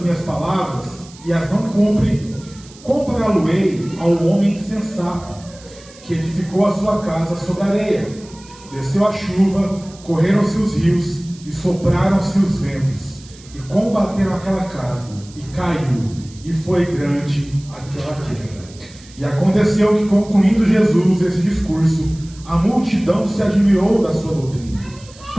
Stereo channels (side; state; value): right; noise; hiss, 22 dB below the sound